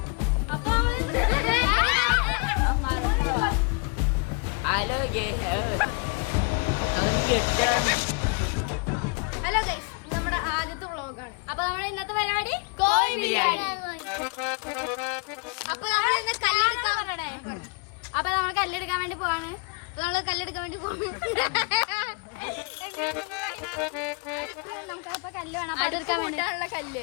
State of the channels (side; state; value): right; quieter; 34.9 dB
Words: അപ്പൊ ഹലോ ഗൈസ്, നമ്മുടെ ആദ്യത്തെ വ്ളോഗാണ്. അപ്പൊ നമ്മുടെ ഇന്നത്തെ പരിപാടി കോഴി ബിരിയാണി. അപ്പൊ നമ്മൾ ഇന്ന് കല്ലെടുക്കാൻ പറയണേ. അപ്പൊ നമ്മൾ കല്ലെടുക്കാൻ വേണ്ടി പോവാണ്. നമ്മള് കല്ലെടുക്കാൻ വേണ്ടി പോവാണ്. നമുക്ക് അപ്പൊ കല്ല് വേണം. അടുപ്പ് കൂട്ടാനുള്ള